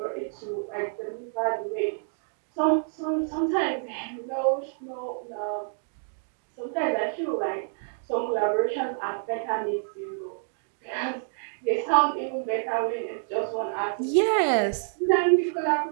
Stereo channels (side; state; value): left; silent; digital silence